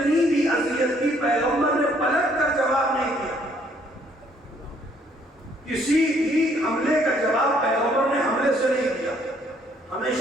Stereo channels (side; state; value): both; normal; correlation 0.65